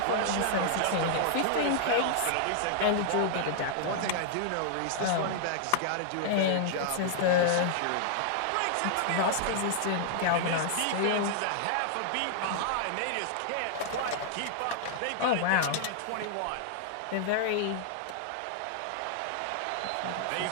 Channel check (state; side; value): different; both; correlation -0.01